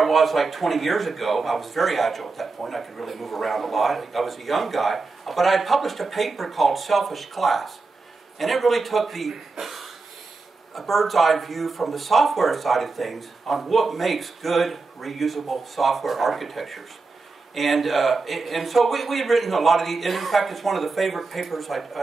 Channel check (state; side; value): quieter; left; 4.0 dB